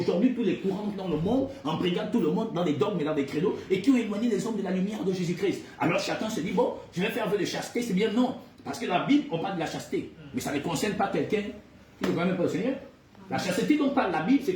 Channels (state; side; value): identical; both; correlation 1.00